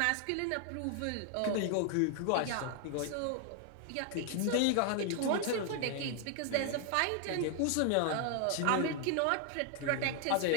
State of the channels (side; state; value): both; different; correlation 0.00